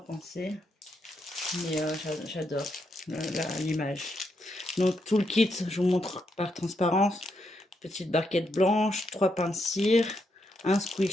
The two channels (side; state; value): both; normal; correlation 0.80